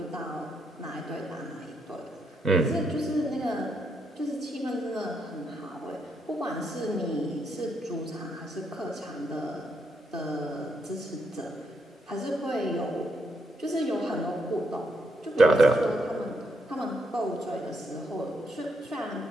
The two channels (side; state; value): both; normal; correlation 0.77